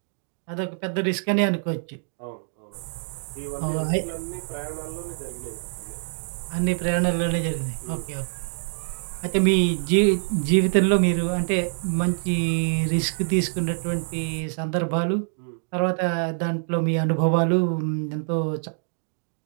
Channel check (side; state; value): left; silent; digital silence